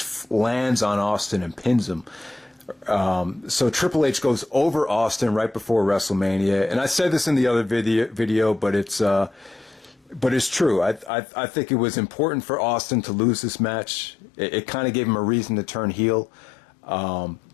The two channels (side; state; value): right; drops out; at 11.1 s